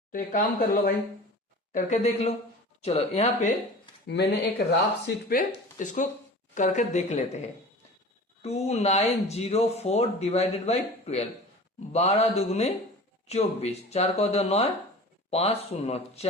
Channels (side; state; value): both; normal; correlation 0.38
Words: तो एक काम कर लो भाई, करके देख लो। चलो यहाँ पे मैंने एक राफ शीट पे इसको करके देख लेते हैं। 2904 डिवाइडेड बाई 12, 12 दुगुने 24, 4 को 9, 5 शून्य,